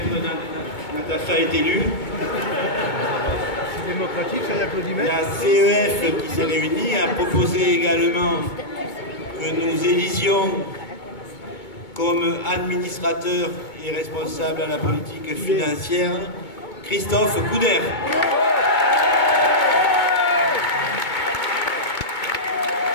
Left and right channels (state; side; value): late; right; 2.2 ms